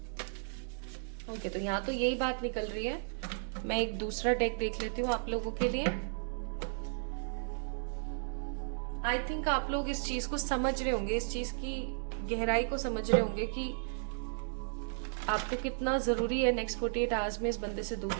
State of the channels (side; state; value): left; silent; digital silence